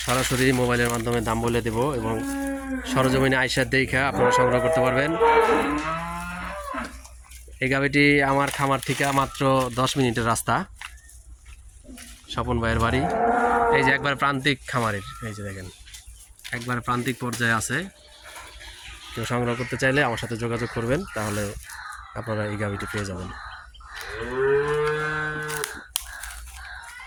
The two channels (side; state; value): both; identical; correlation 1.00